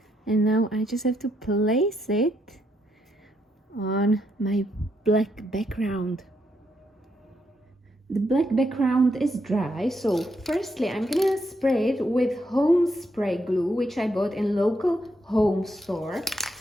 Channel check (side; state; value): both; normal; correlation 0.78